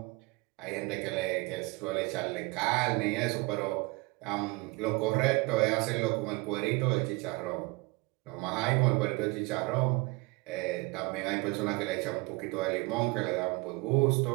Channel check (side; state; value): left; quieter; 25.3 dB